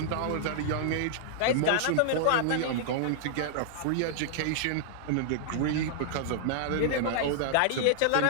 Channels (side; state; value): both; different; correlation -0.01